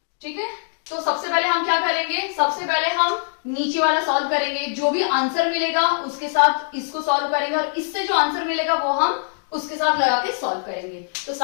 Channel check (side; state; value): right; silent; 64 dB below the other